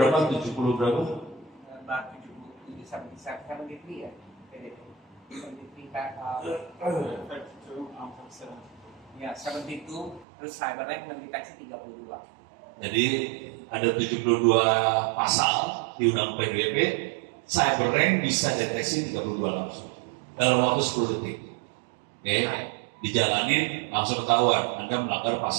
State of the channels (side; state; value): left; drops out; at 10.2 s